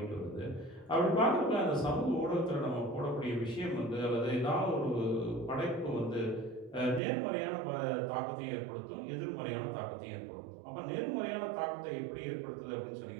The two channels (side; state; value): left; drops out; at 7.0 s